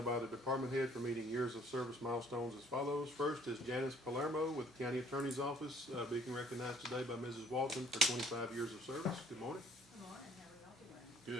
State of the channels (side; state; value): both; normal; correlation 0.60